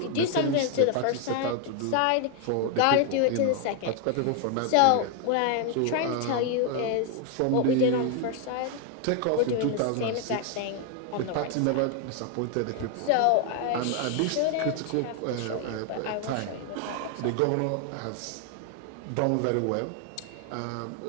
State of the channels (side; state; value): both; different; correlation 0.00